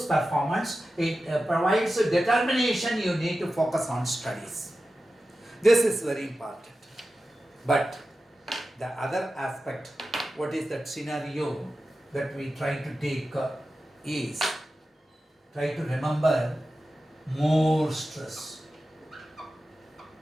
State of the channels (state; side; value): normal; both; correlation 0.93